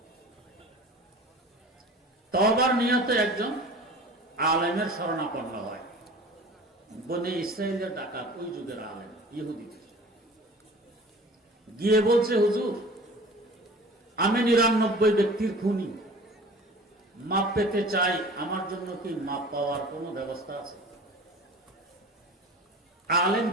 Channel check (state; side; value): normal; both; correlation 0.42